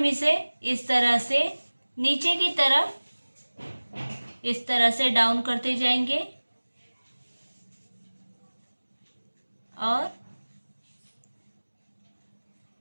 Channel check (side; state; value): both; inverted; correlation -1.00